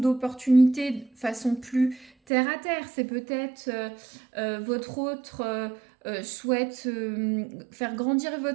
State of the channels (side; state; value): left; drops out; at 2.1 s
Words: de façon plus terre à terre. C'est peut-être votre autre souhaite faire grandir